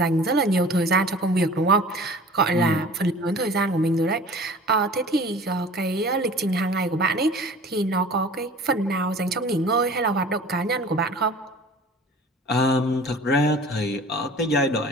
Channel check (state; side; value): normal; both; correlation 0.44